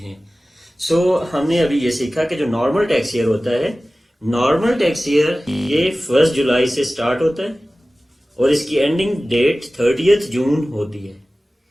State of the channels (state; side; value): normal; both; correlation 0.97